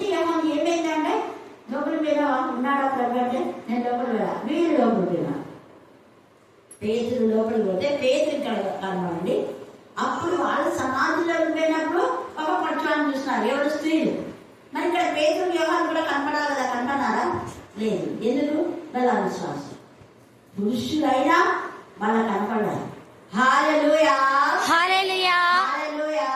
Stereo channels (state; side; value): identical; both; correlation 1.00